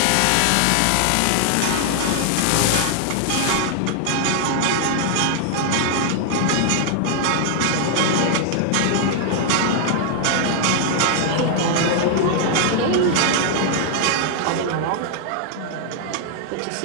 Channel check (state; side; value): different; both; correlation 0.00